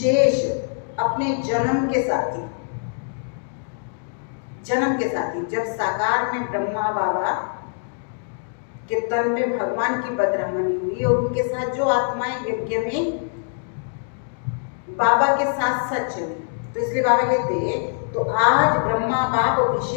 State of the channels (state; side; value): silent; right; digital silence